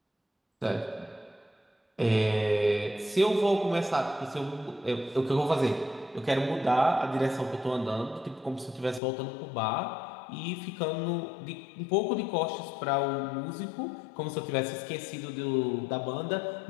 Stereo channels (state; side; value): drops out; right; at 9.0 s